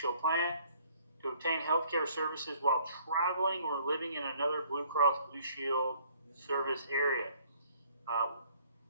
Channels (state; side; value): inverted; both; correlation -0.59